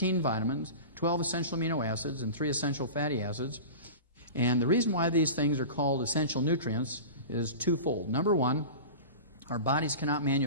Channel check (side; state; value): both; inverted; correlation -0.32